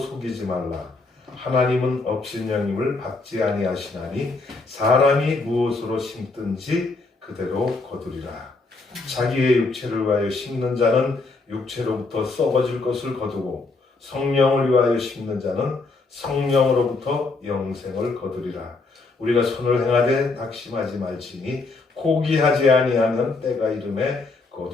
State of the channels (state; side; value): quieter; right; 3.7 dB